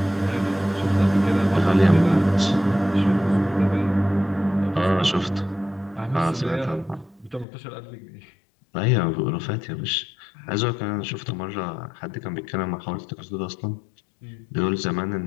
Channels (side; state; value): right; drops out; at 7.5 s